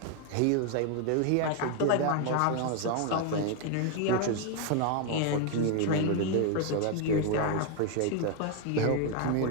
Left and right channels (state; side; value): different; both; correlation 0.01